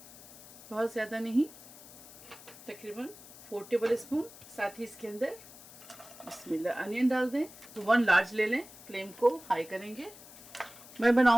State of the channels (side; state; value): left; noise; hiss, 18 dB below the sound